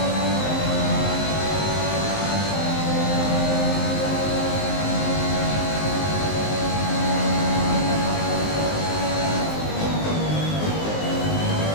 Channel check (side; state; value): right; late; 19 ms